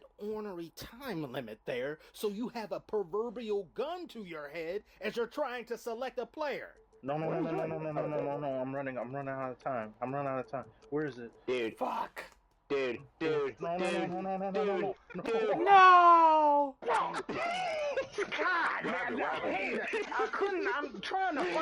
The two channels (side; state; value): both; identical; correlation 1.00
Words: ornery time limit there, so you have a proverbial gun to your head as you're trying to select a player. No, I'm running out of time. Where is it? Dude, Fuck. dude. No. No! God, man, I couldn't. I'm trying to